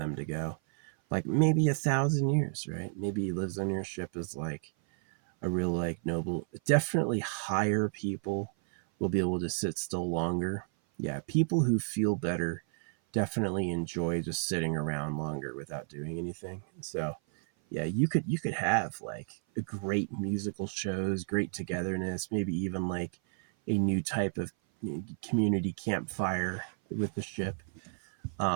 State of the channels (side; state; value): left; silent; 56 dB below the other